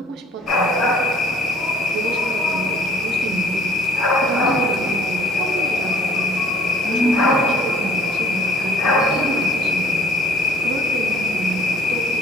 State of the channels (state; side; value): normal; both; correlation 0.55